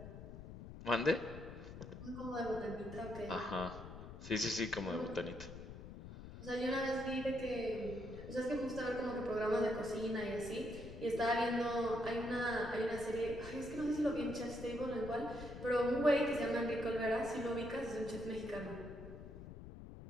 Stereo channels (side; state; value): left; noise; rumble, 12 dB below the sound